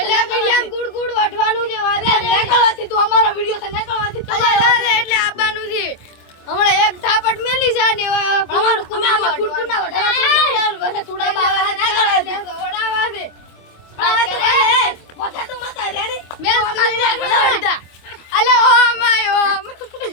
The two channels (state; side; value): late; right; 25 ms